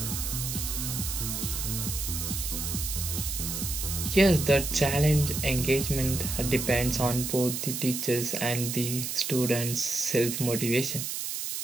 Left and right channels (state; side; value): noise; right; hiss, 4 dB below the sound